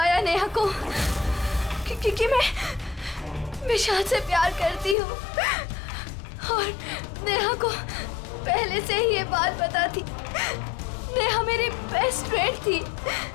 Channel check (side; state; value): right; drops out; at 5.0 s